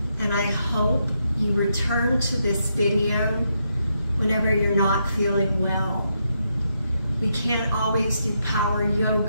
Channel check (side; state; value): both; inverted; correlation -0.81